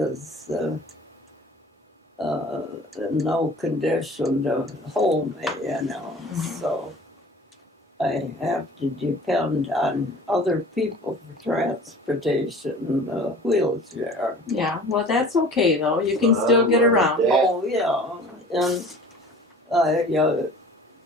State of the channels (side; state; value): both; normal; correlation 0.44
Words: in no condition to hold me, so I have to depend on other people for transportation in a wheelchair. Yeah. Well, that's okay though. You can still get around. Yeah. Oh, yeah, and I